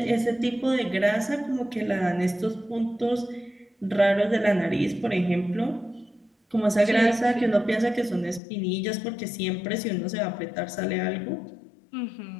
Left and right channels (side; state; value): right; drops out; at 8.4 s